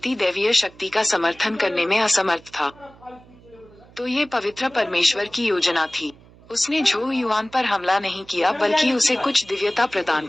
दैवीय शक्ति का समर्थन करने में असमर्थ था। तो ये पवित्र परमेश्वर की योजना थी। उसने झो युआन पर हमला नहीं किया, बल्कि उसे कुछ दिव्यता प्रदान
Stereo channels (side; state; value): right; noise; hum, 25 dB below the sound